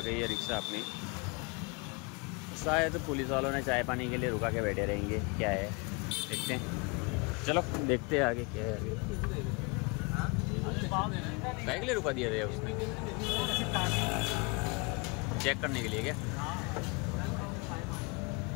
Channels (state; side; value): quieter; right; 30.0 dB